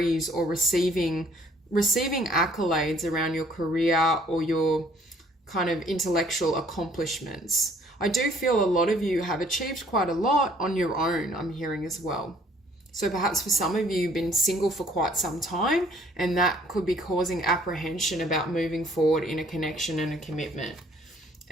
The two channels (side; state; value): both; normal; correlation 0.59